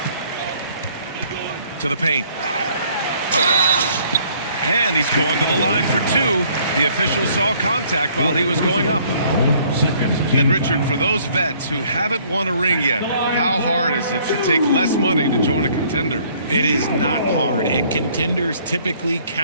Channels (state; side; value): inverted; both; correlation -0.60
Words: To the paint. And he's going to the line for 2. The official saw contact while he was going up. And Richard, for those vets who haven't won a ring yet, how hard is it to take less money to join a contender? It is not hard, and contenders typically